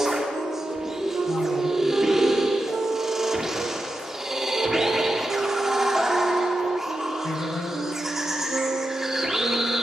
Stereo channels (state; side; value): normal; both; correlation 0.89